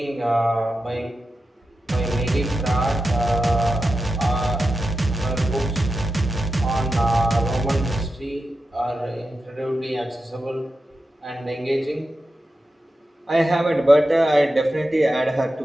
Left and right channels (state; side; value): normal; both; correlation 0.90